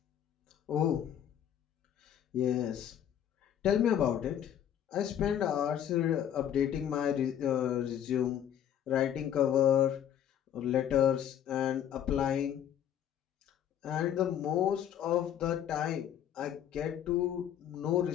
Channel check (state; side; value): quieter; right; 10.0 dB